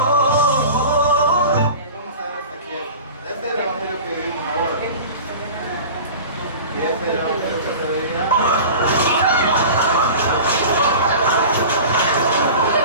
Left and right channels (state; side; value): inverted; both; correlation -0.36